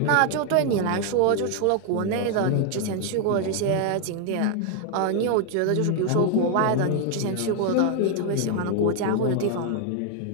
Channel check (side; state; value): both; different; correlation 0.00